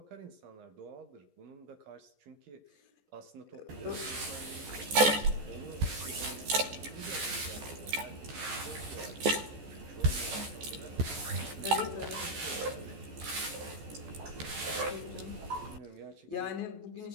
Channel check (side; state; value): left; late; 14 ms